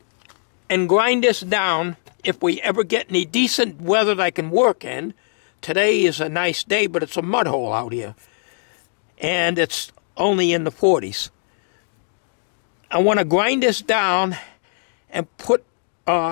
and grind this down if we ever get any decent weather that I can work in. Today is a nice day, but it's a mud hole out here. And it's only in the 40s. I want to grind this down and put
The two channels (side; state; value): right; silent; digital silence